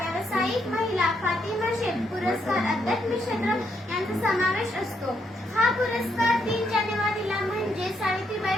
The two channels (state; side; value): normal; both; correlation 0.76